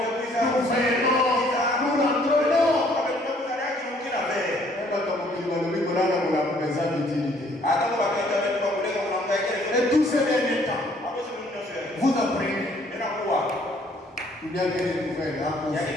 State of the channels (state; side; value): normal; both; correlation 0.62